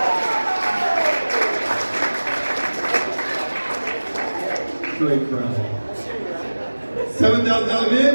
Great crowd. $7,000 bid.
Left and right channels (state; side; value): inverted; both; correlation -1.00